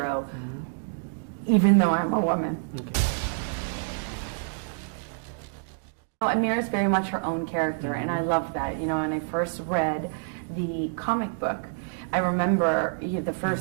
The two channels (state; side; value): silent; left; digital silence